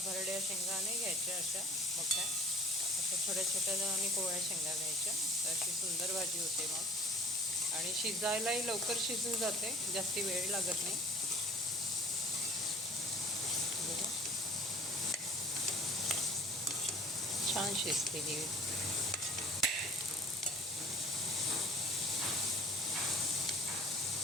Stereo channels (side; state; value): both; normal; correlation 0.49